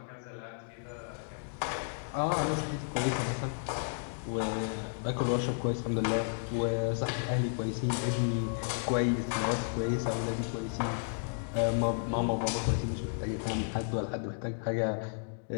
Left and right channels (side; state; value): right; silent; digital silence